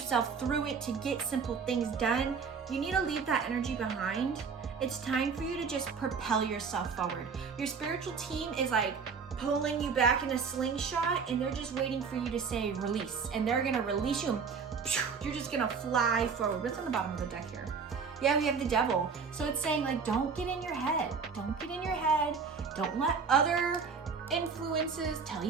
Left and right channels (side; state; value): left; quieter; 5.6 dB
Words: through it to get simple things done. You need to leave that energy behind It's time for you to just propel yourself forward. Your spiritual team is like pulling you back in a slingshot, and they're just waiting for you to say release, and they're gonna release you. You're just gonna fly forward. What's on the bottom of the deck here? Yeah, we have the devil. So it's saying like, don't get in your head. Don't get in your head. Don't let other influences tell